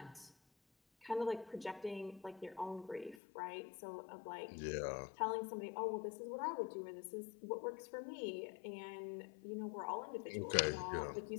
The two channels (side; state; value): right; drops out; at 3.2 s